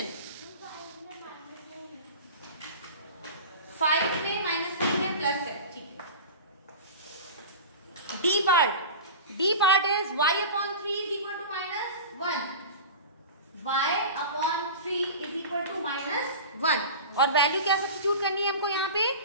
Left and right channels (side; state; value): both; inverted; correlation -0.32